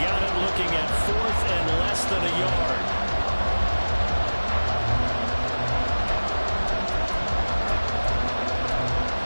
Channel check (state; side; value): inverted; both; correlation -1.00